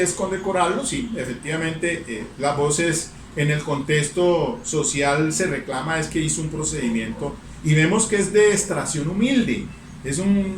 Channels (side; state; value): both; identical; correlation 1.00